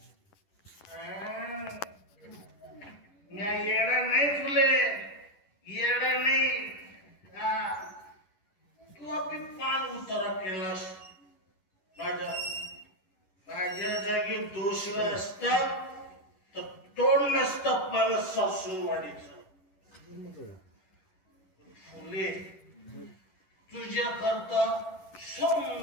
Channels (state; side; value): late; right; 11 ms